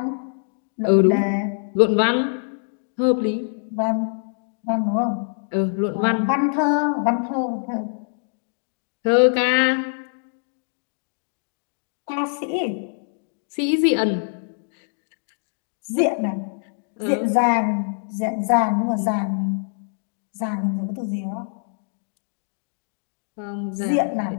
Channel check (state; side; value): silent; right; digital silence